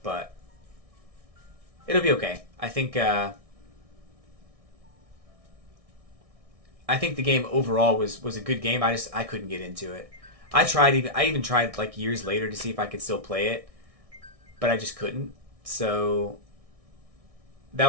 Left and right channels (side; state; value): left; late; 1.6 ms